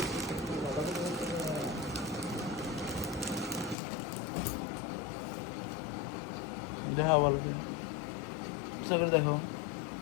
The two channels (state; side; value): drops out; right; at 3.8 s